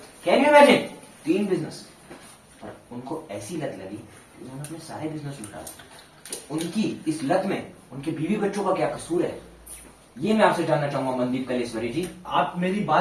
can you imagine, 3 business. पर उनको ऐसी लत लगी कि उन्होंने अपने सारे बिजनेस लुटा। तो उनकी इस लत में उनके बीवी बच्चों का क्या कसूर है, ये मैं आपसे जानना चाहूंगा मनदीप कलेश्वरी जी। आप मेरी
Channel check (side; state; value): both; identical; correlation 1.00